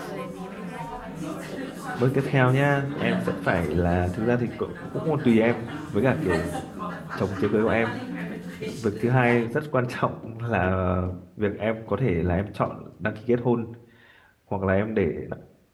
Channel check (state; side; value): identical; both; correlation 1.00